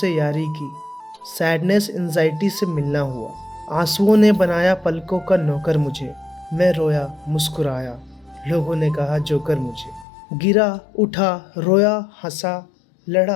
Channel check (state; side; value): drops out; right; at 10.1 s